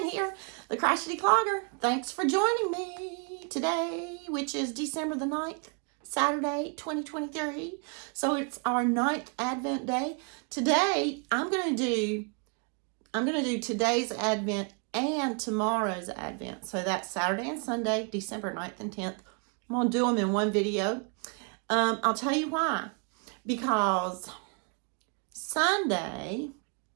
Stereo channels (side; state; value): left; quieter; 37.5 dB